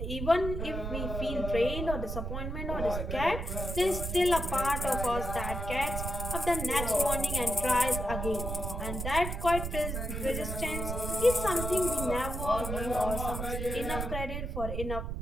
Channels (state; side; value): noise; right; rumble, 4 dB below the sound